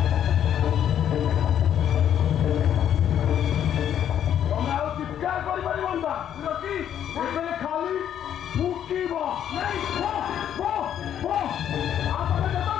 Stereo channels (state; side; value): quieter; right; 9.9 dB